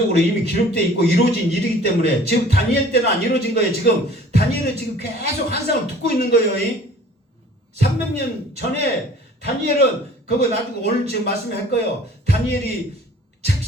이미 기록되어 있고 이루어진 일이기 때문에, 지금 다니엘 때는 안 이루어진 거예요. 지금 다니엘은 지금 계속 환상을 듣고 있는 거예요. 300년 전에 다니엘은 그거 나중에 오늘 지금 말씀할 거예요. 다니엘이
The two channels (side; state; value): both; normal; correlation 0.50